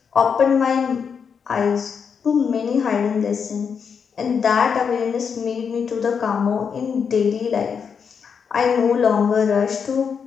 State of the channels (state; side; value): quieter; right; 6.5 dB